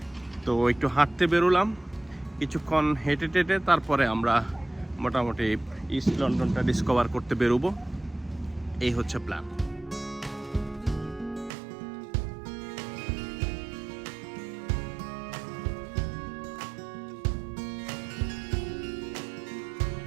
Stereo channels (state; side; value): drops out; left; at 11.5 s